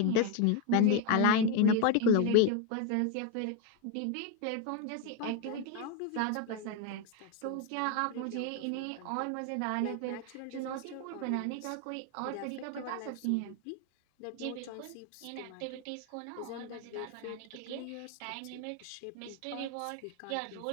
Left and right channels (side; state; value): both; different; correlation 0.01